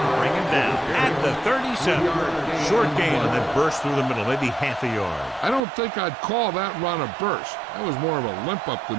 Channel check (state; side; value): drops out; left; at 5.6 s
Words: bring him down at the 37. Short gain and then burst through the middle, maybe half a yard. I don't think I'd call that run a burst. That was more of a limp up the